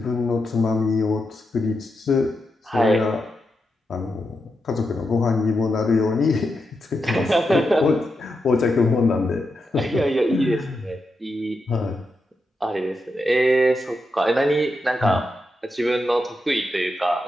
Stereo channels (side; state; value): both; normal; correlation 0.86